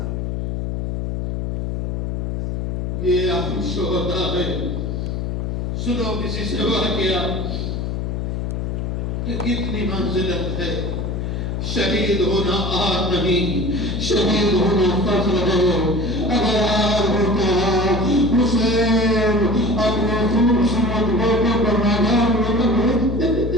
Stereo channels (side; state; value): left; noise; hum, 2 dB below the sound